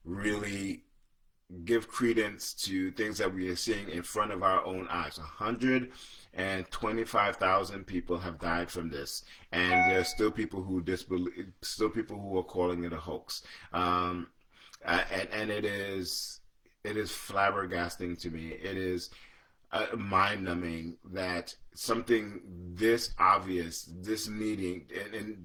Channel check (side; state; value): both; identical; correlation 1.00